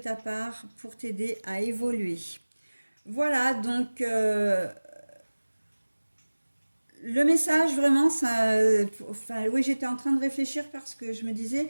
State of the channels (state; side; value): inverted; both; correlation -1.00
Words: part pour t'aider à évoluer. Voilà, donc le message vraiment, ça, enfin, oui, j'étais en train de réfléchir parce que je me disais,